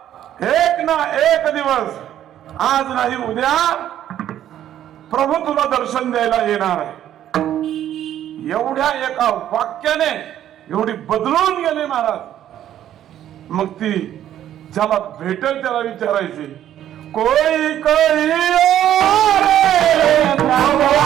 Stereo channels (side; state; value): left; quieter; 11.4 dB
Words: एक ना एक दिवस, आज नाही उद्या प्रभू तुला दर्शन द्यायला येणार आहे. एवढ्या एका वाक्याने एवढी बदलून गेले महाराज. मग ती ज्याला भेटेल त्याला विचारायची, कोई कोई और